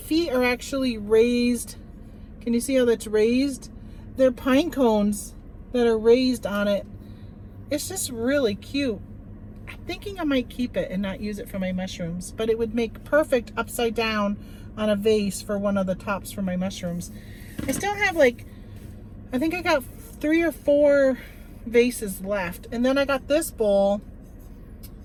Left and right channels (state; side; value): identical; both; correlation 1.00